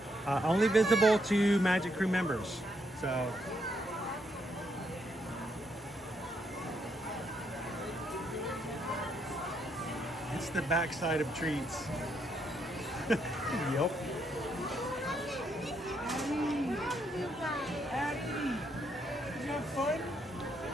Only visible to Magic Crew members. So it's the backside of treats. Yep. Did you have fun?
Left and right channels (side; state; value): both; normal; correlation 0.75